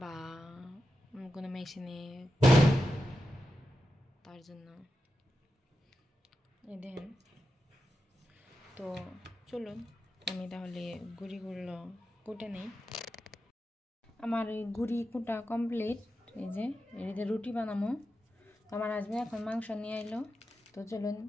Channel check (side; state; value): both; normal; correlation 0.89